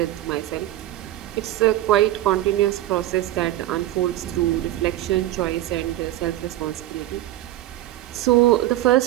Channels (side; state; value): left; quieter; 14.5 dB